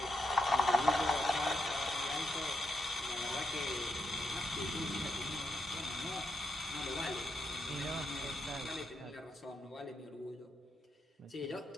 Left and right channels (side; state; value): both; normal; correlation 0.80